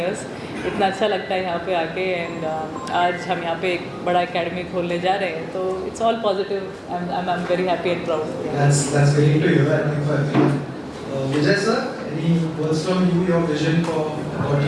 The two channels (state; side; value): identical; both; correlation 1.00